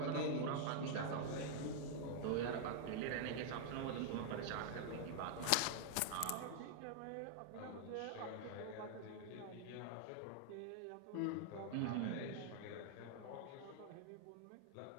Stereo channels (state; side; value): different; both; correlation 0.00